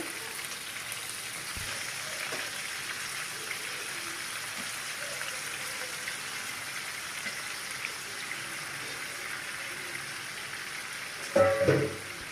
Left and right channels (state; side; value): identical; both; correlation 1.00